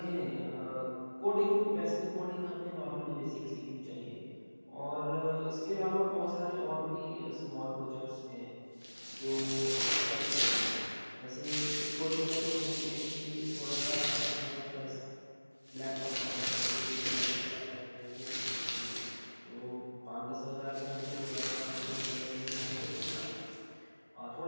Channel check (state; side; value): inverted; both; correlation -1.00